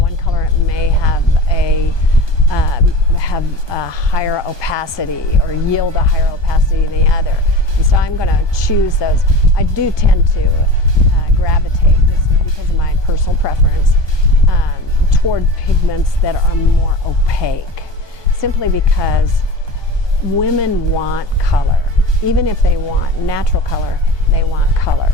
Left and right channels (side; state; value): right; late; 1.2 ms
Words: colorant may have a higher opacity or yield a higher opacity than the other. And so I'm going to choose those. I do tend to gravitate, just because of my personal preference, toward pigments that are more opaque, simply because women want color. Even if they want natural color, they want color.